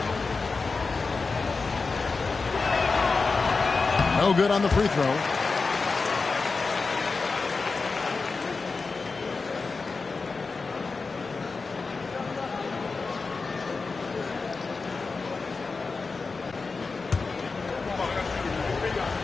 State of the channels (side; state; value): right; quieter; 4.3 dB